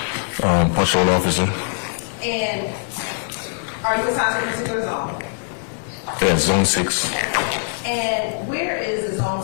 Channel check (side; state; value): right; silent; digital silence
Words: Patrol officer. And are you assigned to a particular zone? Yeah, Zone 6. And where is the Zone